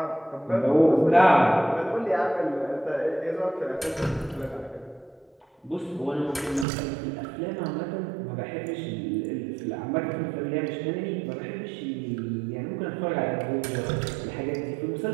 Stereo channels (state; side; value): drops out; left; at 6.7 s